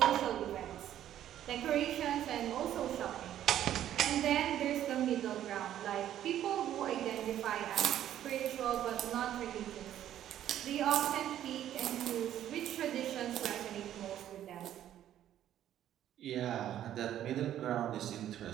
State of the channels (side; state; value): left; quieter; 11.5 dB